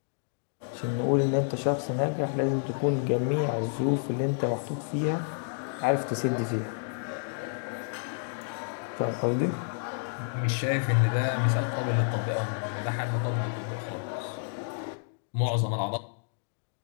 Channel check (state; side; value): silent; right; digital silence